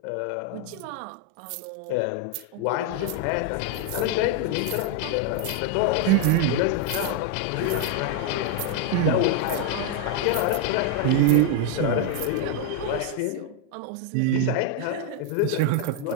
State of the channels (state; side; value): different; both; correlation 0.00